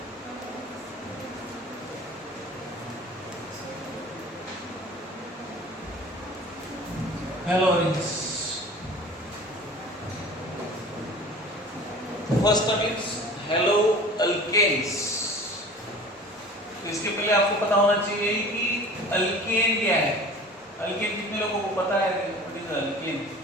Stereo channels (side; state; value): both; normal; correlation 0.42